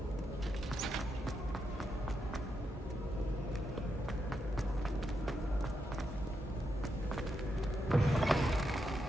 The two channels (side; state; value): both; normal; correlation 0.83